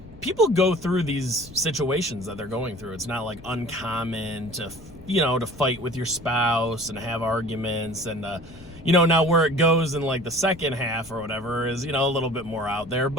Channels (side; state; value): left; noise; rumble, 20 dB below the sound